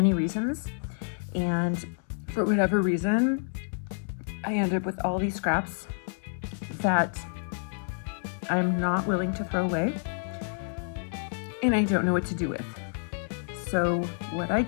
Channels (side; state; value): right; silent; digital silence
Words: reasons. And for whatever reason, I end up with all these scraps that I'm not willing to throw away, and I don't know what to do with. So what I